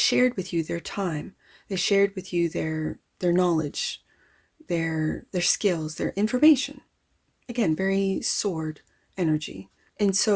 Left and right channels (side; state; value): both; identical; correlation 1.00